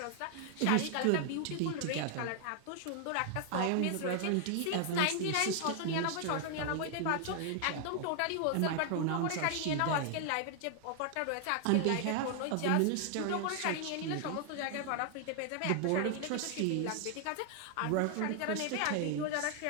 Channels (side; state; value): both; different; correlation 0.00